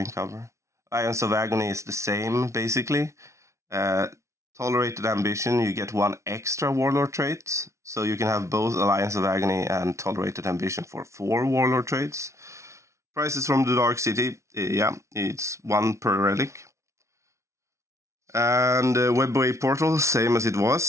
cover. Alliance of Agony is the same, basically. Tolerated Ambition, you get 1 extra Warlord trait. So you can have both Alliance of Agony and Tolerated Ambition for 4 Warlord traits. Prices from the Dark City, yeah, it's 1 per relic. And Webway Portal, same as it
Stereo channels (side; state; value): left; late; 0.14 ms